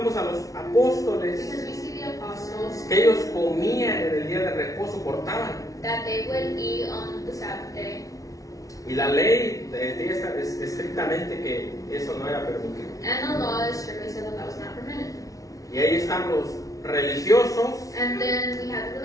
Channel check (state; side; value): late; right; 0.17 ms